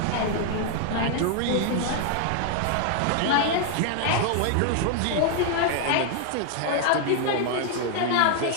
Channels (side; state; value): both; different; correlation 0.00